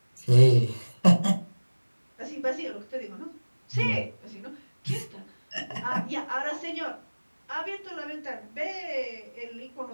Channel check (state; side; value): inverted; both; correlation -1.00